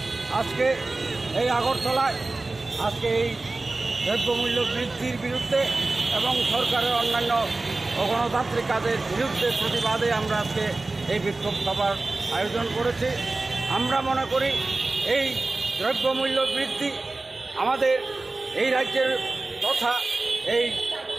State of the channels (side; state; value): left; quieter; 3.2 dB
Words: আজকে এই আগরতলায় আজকে এই দ্রব্যমূল্য বৃদ্ধির বিরুদ্ধে এবং সরকারের অন্যান্য অগণতান্ত্রিক কাজের বিরুদ্ধে প্রতিবাদে আমরা আজকে এই বিক্ষোভ সভার আয়োজন করেছি। আমরা মনে করি এই দ্রব্যমূল্য বৃদ্ধি আমাদের এই রাজ্যের তথা এই